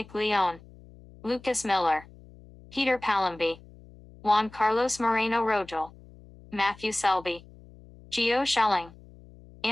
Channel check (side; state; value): left; noise; hum, 22 dB below the sound